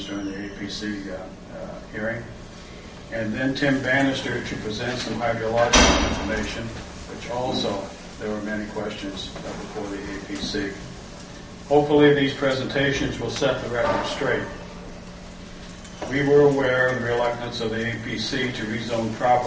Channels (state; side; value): identical; both; correlation 1.00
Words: during the APC hearing. And then Tim Bannister to present some hydrological information, which also there were many questions before the APC. Hopefully these presentations will set the record straight. We were aware of the reluctance of the APC to rezone